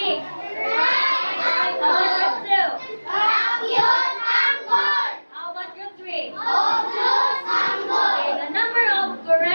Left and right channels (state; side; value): inverted; both; correlation -1.00